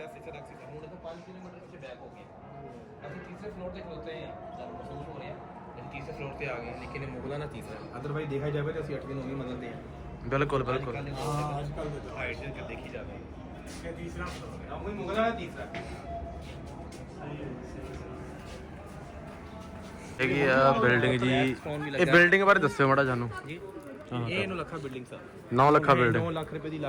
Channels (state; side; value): identical; both; correlation 1.00